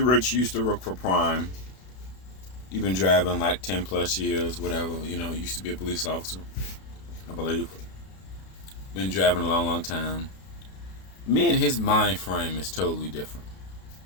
used to work for Prime. He's been driving like 10 plus years, whatever. You know, used to be a police officer, I believe. Been driving a long, long time. Me and his mind frame is totally different.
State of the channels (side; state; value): right; late; 32 ms